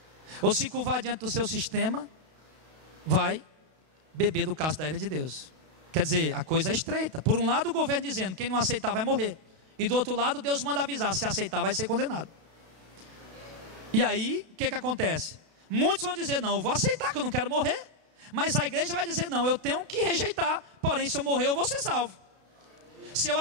ou se curvar diante do seu sistema, vai beber do cálice da ira de Deus. Quer dizer, a coisa é estreita. Por um lado o governo dizendo, quem não aceitar vai morrer. E do outro lado Deus manda avisar, se aceitar vai ser condenado. E aí, o que acontece? Muitos vão dizer, não, eu vou aceitar que eu não quero morrer. Mas a igreja vai dizer, não, eu tenho que rejeitar. Porém, se eu morrer eu vou ser salvo. Se eu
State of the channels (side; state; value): left; late; 32 ms